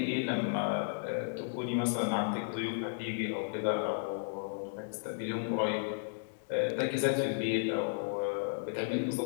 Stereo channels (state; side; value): silent; right; digital silence